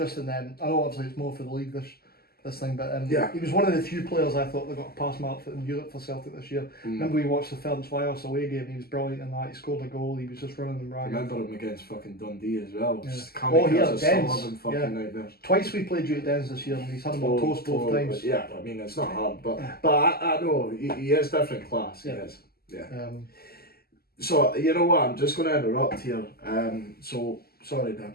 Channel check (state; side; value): late; right; 0.45 ms